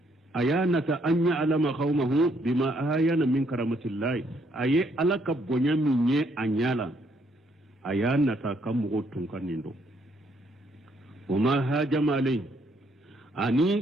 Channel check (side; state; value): both; normal; correlation 0.70